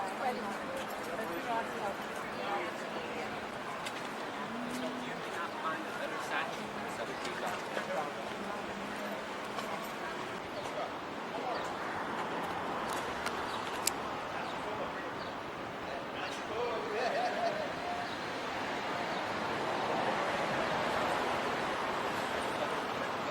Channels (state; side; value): identical; both; correlation 1.00